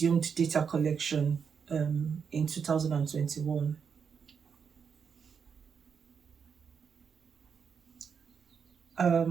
data collection in 2021.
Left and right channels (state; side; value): quieter; left; 6.6 dB